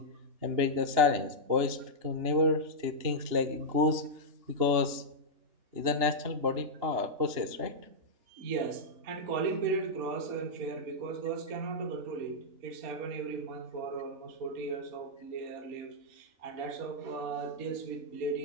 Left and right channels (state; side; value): late; left; 2.9 ms